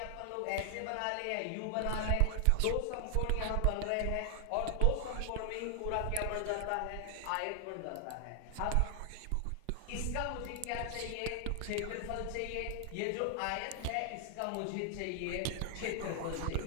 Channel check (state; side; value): different; both; correlation 0.00